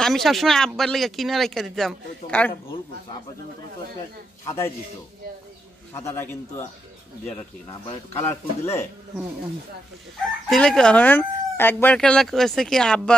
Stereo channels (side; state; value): both; normal; correlation 0.83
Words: আমি সবসময় আব্বার লেগে কিনে রেখে দিতাম। কারণ ভুল করছো, আব্বার জন্য তোমার তো একটা সাদাই দিত, সাদাটা কিন্তু দেওয়াটা ঠিক না, আবার একটু কালারফুল দিলে। দিলে কি হন, একবার খেলা করেছে কি